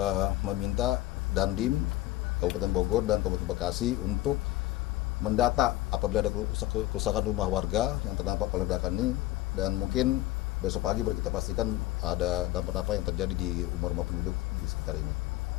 meminta Dandim Kabupaten Bogor dan Kabupaten Bekasi untuk mendata apabila ada kerusakan rumah warga yang terdampak oleh ledakan ini, dan mungkin besok pagi baru kita pastikan ada dampak apa yang terjadi di rumah-rumah penduduk di sekitar ini.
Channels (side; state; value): right; quieter; 16.6 dB